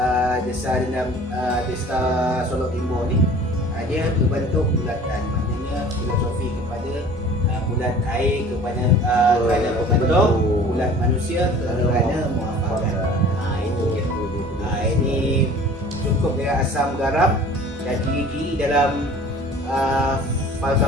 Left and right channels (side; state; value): both; normal; correlation 0.46